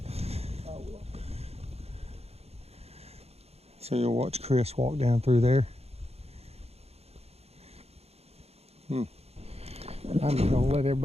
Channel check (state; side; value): late; left; 0.30 ms